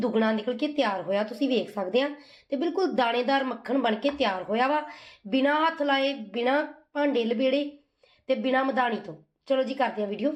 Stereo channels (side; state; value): both; identical; correlation 1.00